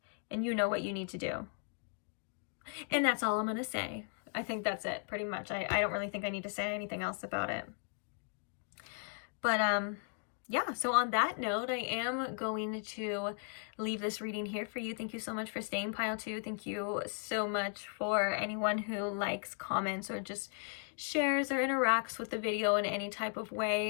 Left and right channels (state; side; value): silent; right; 53 dB below the other